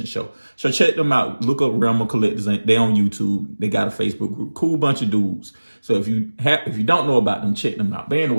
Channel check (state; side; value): inverted; both; correlation -1.00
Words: show. So check them out. Look up Realm of Collectors. They on YouTube. They got a Facebook group. Cool bunch of dudes. So if you don't know about them, check them out. But